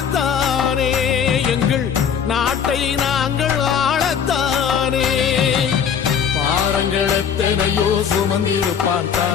எங்கள் நாட்டை நாங்கள் ஆளத்தானே. பாரங்கள் எத்தனையோ சுமந்திருப்பான்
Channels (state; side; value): quieter; right; 7.7 dB